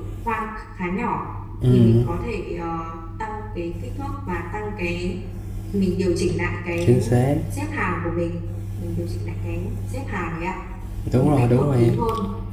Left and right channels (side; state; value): both; identical; correlation 1.00